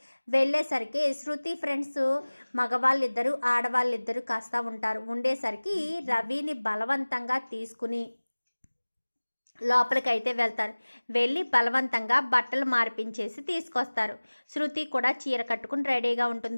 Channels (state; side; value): inverted; both; correlation -1.00